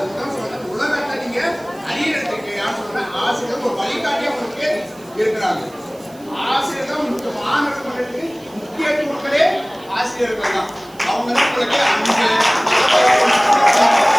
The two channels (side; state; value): right; noise; hiss, 25 dB below the sound